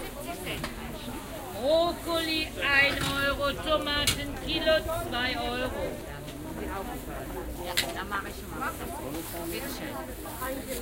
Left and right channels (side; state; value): both; identical; correlation 1.00